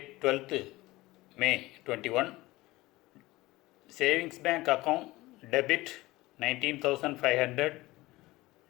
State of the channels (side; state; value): right; quieter; 19.5 dB